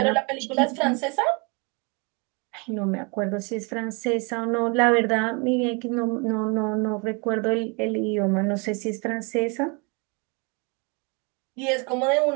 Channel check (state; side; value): quieter; left; 32.1 dB